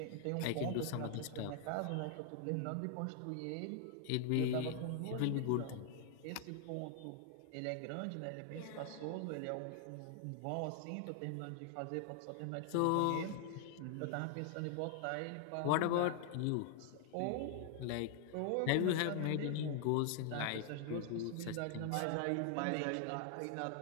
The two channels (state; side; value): different; both; correlation 0.00